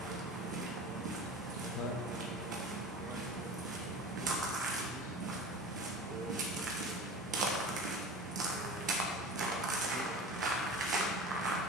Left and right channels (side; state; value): both; normal; correlation 0.35